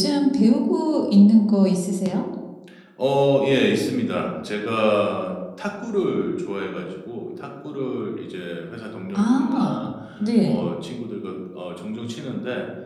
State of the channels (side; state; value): both; identical; correlation 1.00